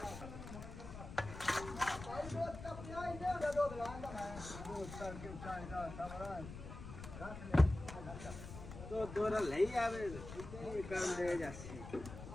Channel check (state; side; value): noise; left; rumble, 11 dB below the sound